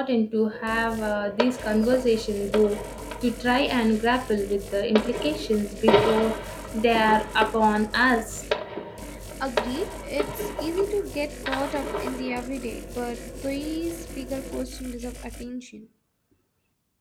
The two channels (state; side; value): identical; both; correlation 1.00